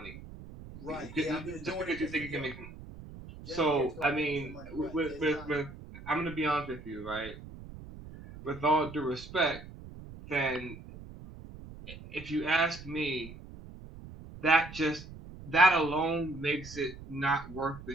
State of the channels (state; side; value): noise; right; rumble, 15 dB below the sound